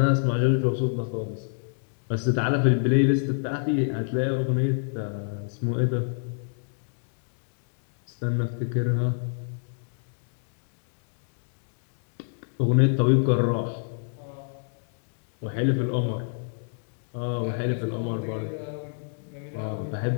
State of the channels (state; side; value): silent; right; digital silence